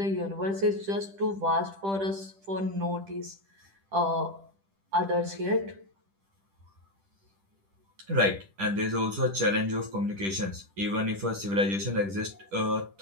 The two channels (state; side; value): late; left; 10 ms